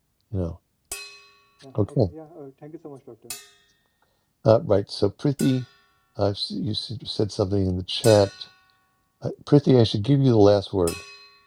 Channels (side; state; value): both; identical; correlation 1.00